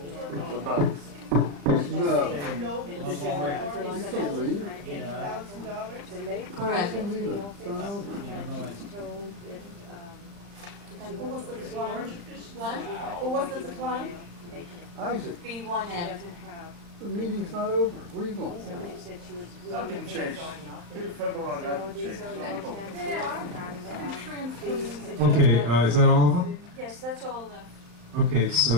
What about it? No. Correct. And who was the decline? What? Who was the decline? Isaac, B1M. the meeting's not over. Where are you going? Somebody said she was really. Nothing changed. Till February, nothing changed. Okay, is that all of them? Yes, that's all of them. Okay,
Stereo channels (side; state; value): left; late; 35 ms